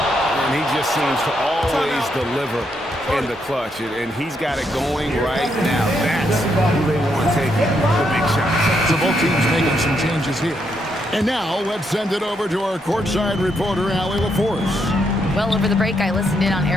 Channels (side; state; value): both; normal; correlation 0.78